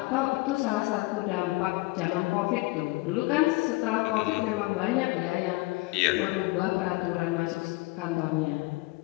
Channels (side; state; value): right; quieter; 23.4 dB